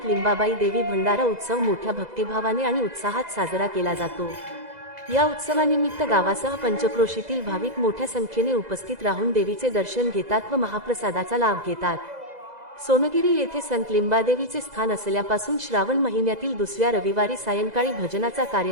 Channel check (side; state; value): left; late; 2.0 ms